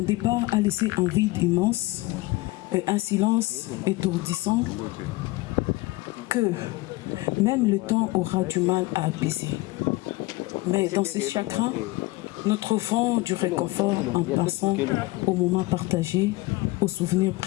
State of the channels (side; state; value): right; quieter; 20.8 dB